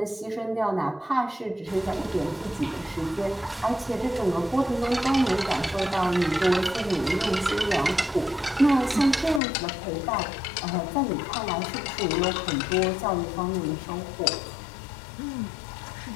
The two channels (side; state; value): right; drops out; at 9.4 s